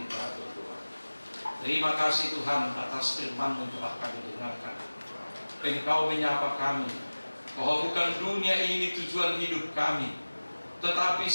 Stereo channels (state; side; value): inverted; both; correlation -1.00